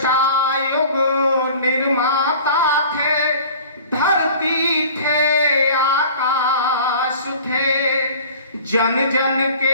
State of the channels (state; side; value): inverted; both; correlation -0.45